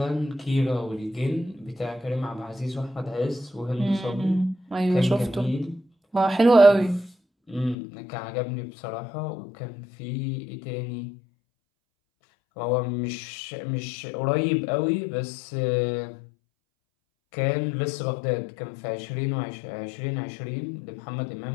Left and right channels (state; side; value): drops out; right; at 7.8 s